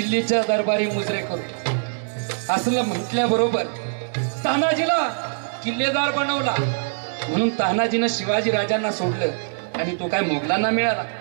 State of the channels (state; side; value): silent; left; digital silence